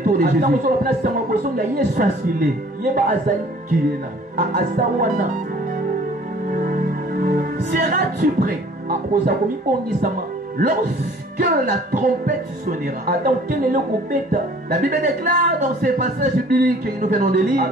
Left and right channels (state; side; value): normal; both; correlation 0.53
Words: de Jésus, sache qu'il est là. Seras-tu prêt lorsque la trompette sonnera? La Bible déclare dans ces passages bibliques que nous venons de lire